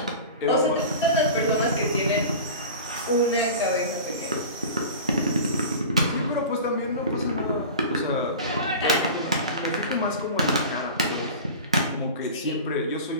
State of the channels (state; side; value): inverted; both; correlation -0.34